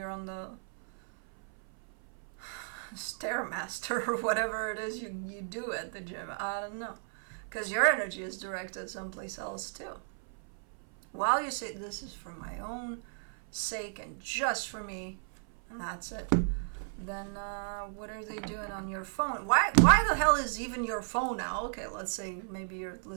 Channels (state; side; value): silent; left; 55 dB below the other